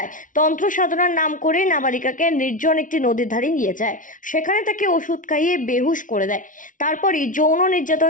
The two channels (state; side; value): late; right; 0.38 ms